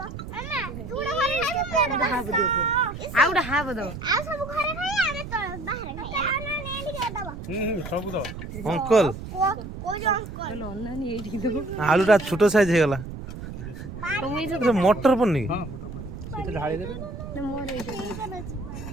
মামা তুড়া ঘরে খাই আউডা হাব দাও আ সব ঘরে খাই আরে তো বাহিরে খাই আ না নে এদিকে দাও ସବୁ ତ অঙ্কল কই যে অঙ্কল অন্যান্য এইদিকে দেবো। আলুটা ছোট সাইজ হয়ে গেল। মটর পড়নি? ହଁ ମୋଟର ପଡିଛି ସେଇଟା ଢାଳି ଦେବେ। ନା ମୋର ଏଇଟା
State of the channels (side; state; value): right; noise; rumble, 10 dB below the sound